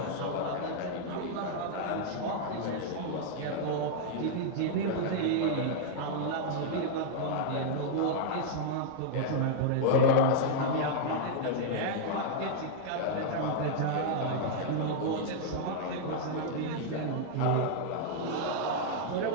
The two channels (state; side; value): different; both; correlation -0.01